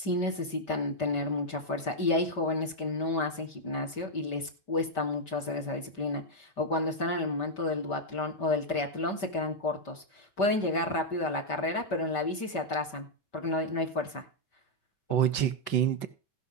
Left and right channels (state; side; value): late; right; 5.1 ms